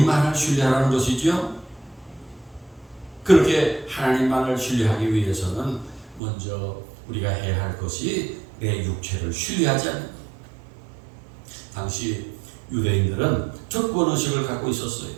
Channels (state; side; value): drops out; left; at 6.2 s